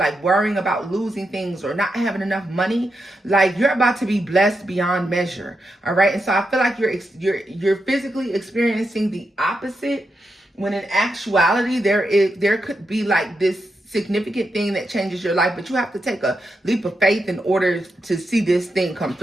worrying about losing things or not having enough money. Like, you're about to be blessed beyond measure, all right? And so I feel like you're physically experiencing the opposite, when in actuality there could be like this significant thing that changes your life, but you have to take a leap of faith in order to see this thing come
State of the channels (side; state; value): both; normal; correlation 0.85